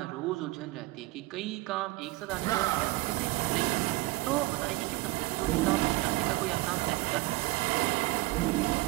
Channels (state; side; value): quieter; left; 20.0 dB